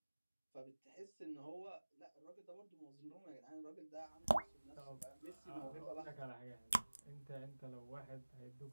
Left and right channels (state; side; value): inverted; both; correlation -1.00